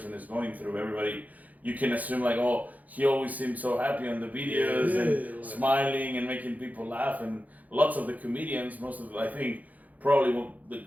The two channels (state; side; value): late; left; 0.078 ms